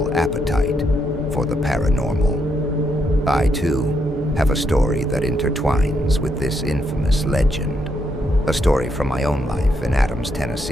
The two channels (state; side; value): normal; both; correlation 0.78